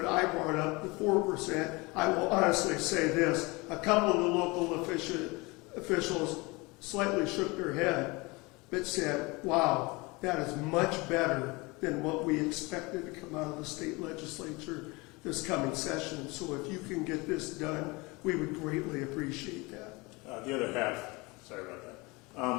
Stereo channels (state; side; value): quieter; right; 25.1 dB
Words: I brought up the 4%, I will honestly say this, a couple of the local officials slightly shook their head, but said, wow, that is much better than what we expected to come out of the state legislature this coming session. So if you can get this done, we would greatly appreciate that. The other half, sorry about